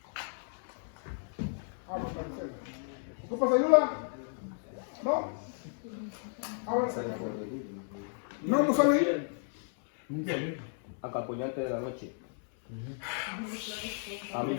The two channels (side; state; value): right; silent; 55 dB below the other